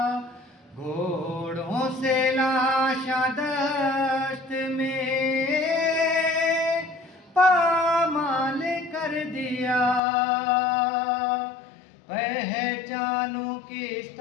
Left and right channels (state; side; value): drops out; right; at 10.0 s